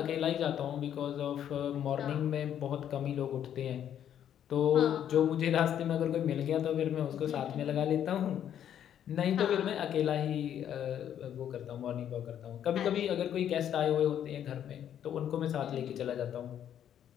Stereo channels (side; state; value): right; quieter; 9.9 dB